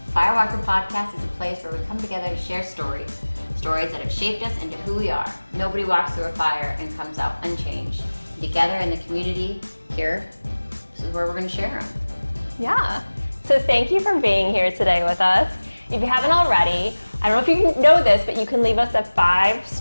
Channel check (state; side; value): inverted; both; correlation -1.00